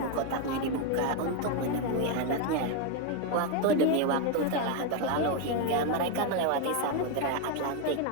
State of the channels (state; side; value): different; both; correlation 0.02